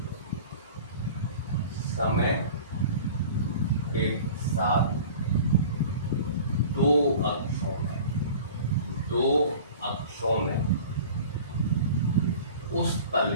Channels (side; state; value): both; inverted; correlation -0.41